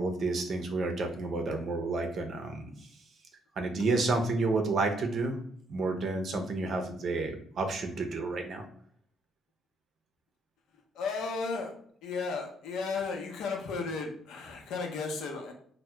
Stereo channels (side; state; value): both; normal; correlation 0.70